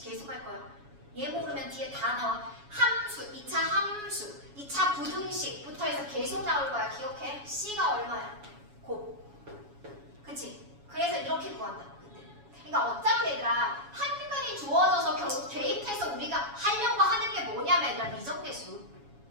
계속 할 거야. 얘 모르면 뒤에 다 나와. 함수, 2차 함수, 2차 부등식부터 해서 계속 나올 거야. 기억해. C가 얼마야? 곱. 그치? 그래서 이렇게 구한다. 그러니까 어차피 얘들아 한근이 주어져서 결국 대입해서 우리가 하려고 하는 게 뭐냐면 얘들아 미정계수.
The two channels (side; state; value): left; late; 7.1 ms